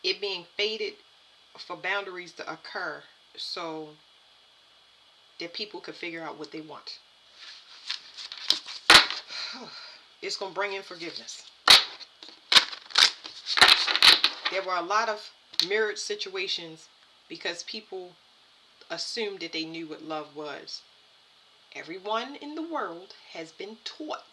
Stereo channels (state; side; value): identical; both; correlation 1.00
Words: it being faded for boundaries to occur so that people could figure out what they want. It's going to bring in forgiveness. There were a lot of mirrored situations because people assumed that they knew what love was. Everyone in the world has been